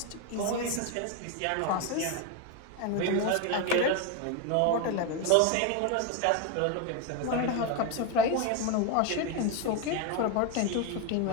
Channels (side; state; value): both; different; correlation 0.02